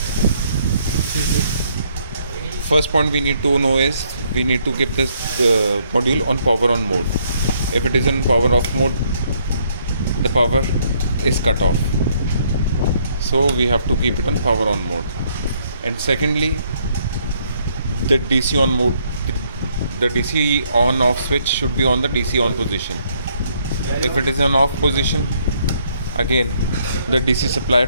First point we need to know is we need to keep this module on power on mode. If it is in power off mode, the power is cut off. So we have to keep it on power on mode. And secondly, the DC on mode, the DC on off switch should be on the DC on position. If it is an off position, again the DC supply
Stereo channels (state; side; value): inverted; both; correlation -0.69